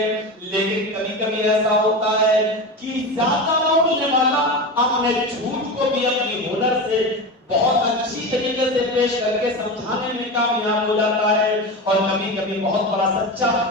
لیکن کبھی کبھی ایسا ہوتا ہے کہ زیادہ بولنے والا اپنے جھوٹ کو بھی اپنی ہنر سے بہت اچھی طریقے سے پیش کر کے سمجھانے میں کامیاب ہو جاتا ہے. اور کبھی کبھی بہت بڑا سچا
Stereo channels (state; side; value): normal; both; correlation 0.23